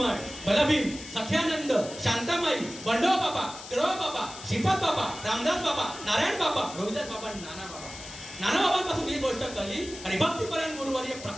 बलभीम, सख्यानंद, शांतामाई, बंडोबा बाबा, केळवा बाबा, श्रीपाद बाबा, रामदास बाबा, नारायण बाबा, रविदास बाबा, नाना बाबा. नाना बाबांपासून ही गोष्ट कली आणि भक्तिपरायण गुरुवर्य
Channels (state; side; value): noise; left; hiss, 13 dB below the sound